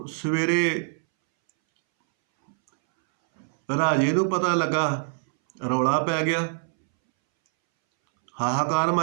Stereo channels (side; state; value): left; silent; 62 dB below the other